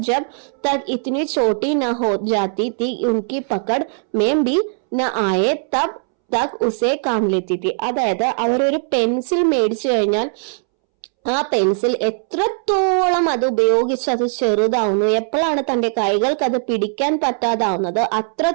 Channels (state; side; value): silent; left; 66 dB below the other